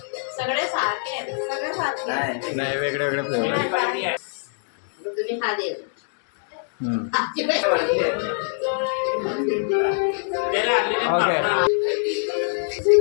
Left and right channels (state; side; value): silent; right; 63 dB below the other